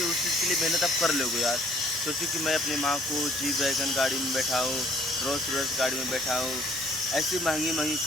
के लिए मेहनत आप कर लोगे यार। सोचिए कि मैं अपनी माँ को जीप वैगन गाड़ी में बैठाऊँ, रोल्स रॉयस गाड़ी में बैठाऊँ, ऐसी महंगी महंगी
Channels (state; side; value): normal; both; correlation 0.58